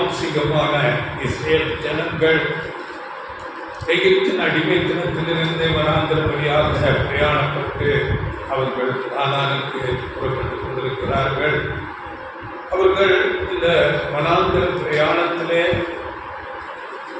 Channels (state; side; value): identical; both; correlation 1.00